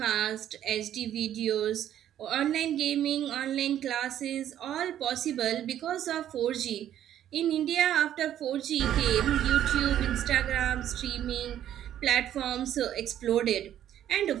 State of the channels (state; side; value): quieter; left; 11.2 dB